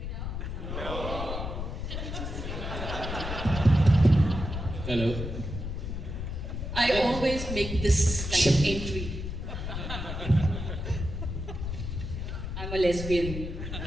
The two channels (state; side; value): noise; left; rumble, 5 dB below the sound